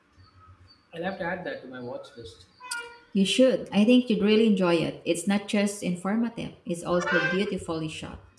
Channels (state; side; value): identical; both; correlation 1.00